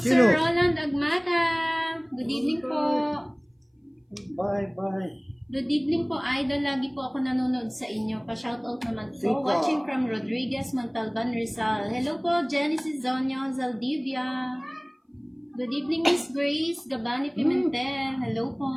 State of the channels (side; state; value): both; identical; correlation 1.00